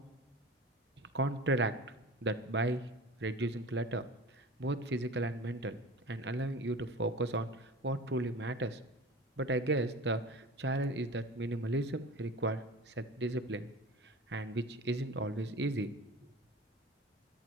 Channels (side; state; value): both; normal; correlation 0.36